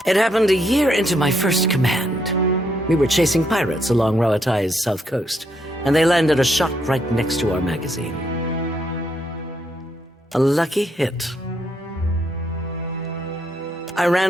It happened a year into my first command. We were chasing pirates along Rowatai's south coast, and they landed a shot right next to our magazine. A lucky hit. I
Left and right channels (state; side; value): normal; both; correlation 0.76